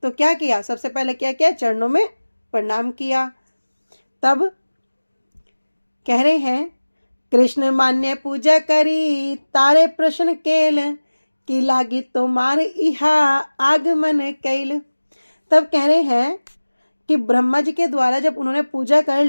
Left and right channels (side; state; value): both; inverted; correlation -1.00